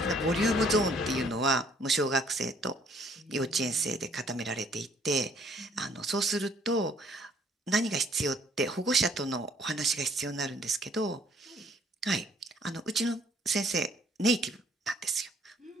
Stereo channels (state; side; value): normal; both; correlation 0.61